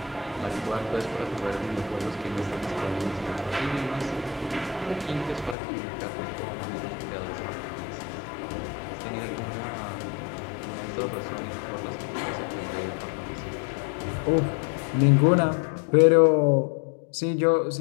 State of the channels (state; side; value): drops out; right; at 5.6 s